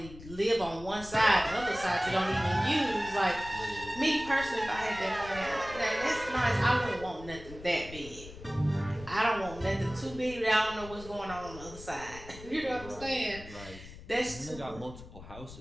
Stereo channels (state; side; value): noise; left; rumble, 15 dB below the sound